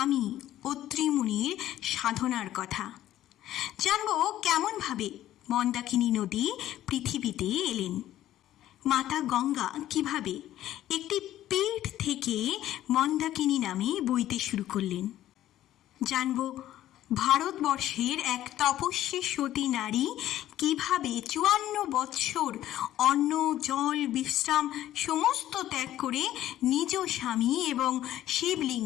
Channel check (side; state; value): right; quieter; 13.2 dB